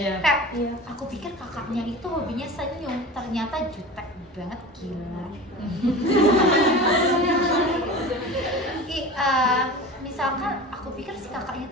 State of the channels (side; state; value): both; normal; correlation 0.34